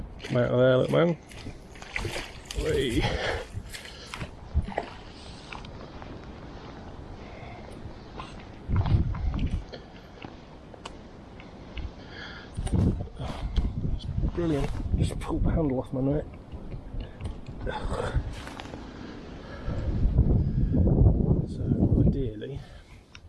Come out of there, little man. Whee. brilliant. Just pulled the handle off my neck. So ideally,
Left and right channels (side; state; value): both; identical; correlation 1.00